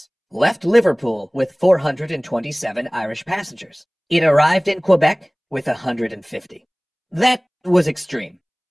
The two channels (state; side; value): identical; both; correlation 1.00